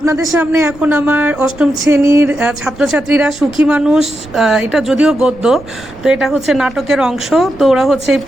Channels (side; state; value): right; noise; rumble, 20 dB below the sound